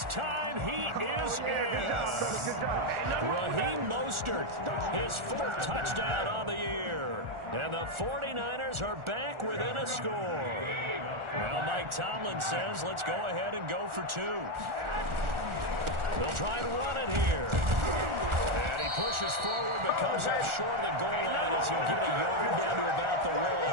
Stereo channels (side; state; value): left; late; 1.4 ms